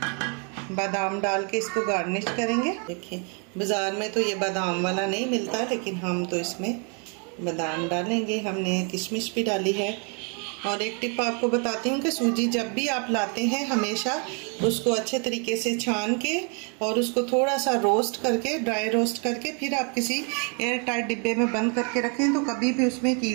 बादाम डाल के इसको गार्निश करेंगे। देखिए बाज़ार में तो ये बादाम वाला नहीं मिलता, लेकिन हम तो इसमें बादाम डालेंगे। हमने किशमिश भी डाली है। और एक टिप आपको बताती हूँ कि सूजी जब भी आप लाते हैं हमेशा उसको अच्छे तरीके से छान के और उसको थोड़ा सा रोस्ट करके, ड्राई रोस्ट करके, फिर आप किसी एयर टाइट डिब्बे में बंद करके रखें तो कभी भी उसमें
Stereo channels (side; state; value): left; quieter; 37.2 dB